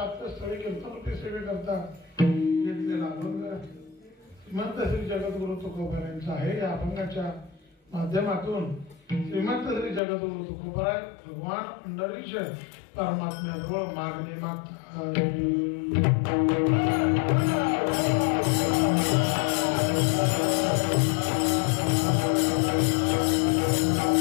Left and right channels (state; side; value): drops out; right; at 10.0 s